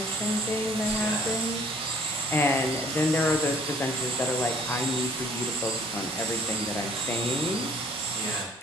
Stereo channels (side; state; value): both; normal; correlation 0.58